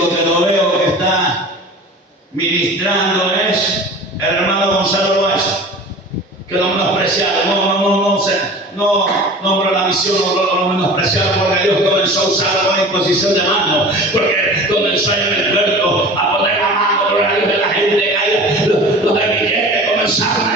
que lo veo que está ministrando es el hermano Gonzalo Loaiza, que lo hemos apreciado. misión lo menospreciaron, porque Dios comenzó a usarlo con imposición de manos, porque comenzó en el puerto a poner la mano, gloria a Dios, de la gente caída, los de billetes comenzaron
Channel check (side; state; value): both; normal; correlation 0.39